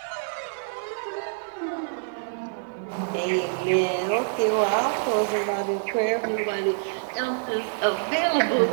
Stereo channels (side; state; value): left; silent; 61 dB below the other